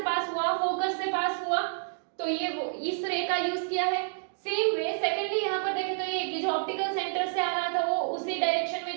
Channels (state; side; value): silent; left; digital silence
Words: पास हुआ, फोकस से पास हुआ, तो ये वो इस रे का यूज किया है। सेम वे सेकेंडली यहाँ पर देखें तो ये जो ऑप्टिकल सेंटर से आ रहा था वो उसी डायरेक्शन में